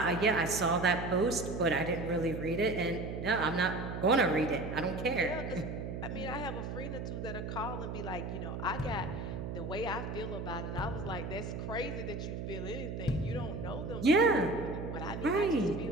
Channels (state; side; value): noise; right; hum, 5 dB below the sound